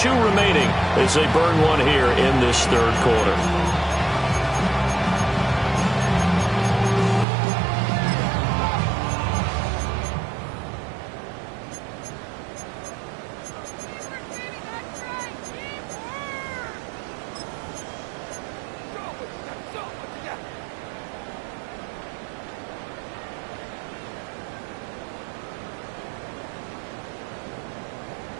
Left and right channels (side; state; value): left; drops out; at 7.2 s